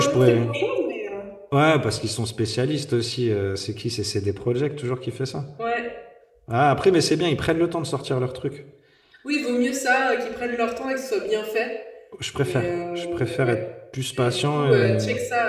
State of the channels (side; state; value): both; identical; correlation 1.00